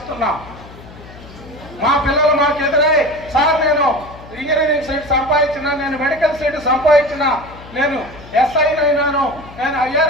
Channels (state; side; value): noise; left; hum, 18 dB below the sound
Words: మా పిల్లలు మాకు ఎదురై, సార్ నేను ఇంజనీరింగ్ సీట్ సంపాదించిన, నేను మెడికల్ సీట్ సంపాదించిన, నేను ఎస్ఐ అయినాను, నేను